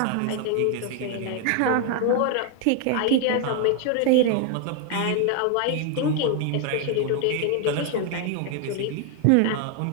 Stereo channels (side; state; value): both; different; correlation 0.00